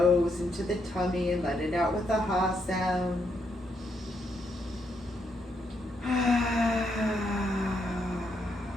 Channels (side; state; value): both; normal; correlation 0.77